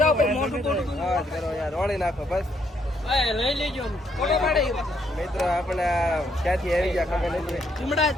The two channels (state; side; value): normal; both; correlation 0.73